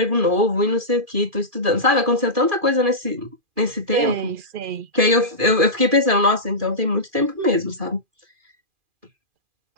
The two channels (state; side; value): late; left; 2.4 ms